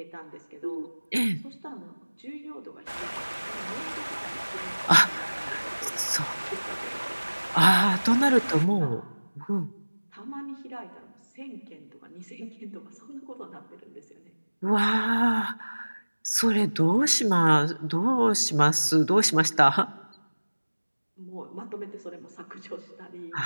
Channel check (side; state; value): both; inverted; correlation -1.00